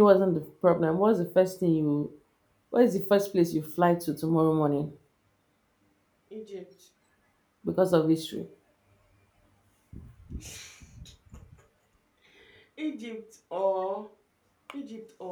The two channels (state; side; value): identical; both; correlation 1.00